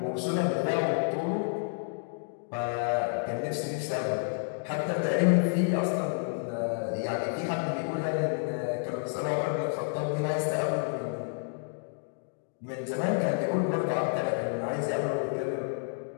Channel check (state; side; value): silent; right; digital silence